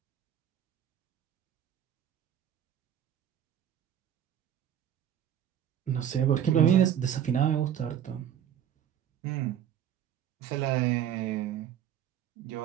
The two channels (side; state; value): left; quieter; 10.0 dB